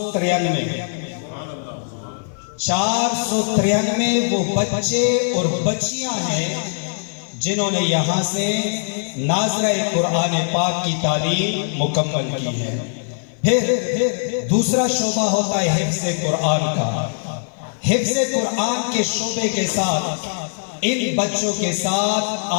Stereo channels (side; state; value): right; silent; 58 dB below the other